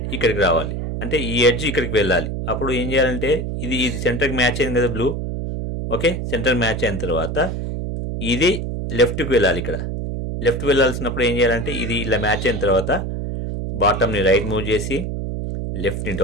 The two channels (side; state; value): right; noise; hum, 4 dB below the sound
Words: ఇక్కడికి రావాలి అంటే ఈ ఎడ్జ్ ఇక్కడికి వెళ్ళాలి. అప్పుడు ఏం చేయాలంటే ఇది సెంటర్కి మ్యాచ్ అయింది కదా బ్లూ. ఓకే, సెంటర్ మ్యాచ్ అయిన తర్వాత ఇది లెఫ్ట్కి వెళ్ళాలి. ఇక్కడ లెఫ్ట్ వెళ్ళాల్సినప్పుడు ఏం చేయాలంటే ఇది ఇలా మ్యాచ్ అయిన తర్వాత బాటమ్ని రైట్ మూవ్ చేసి లెఫ్ట్ని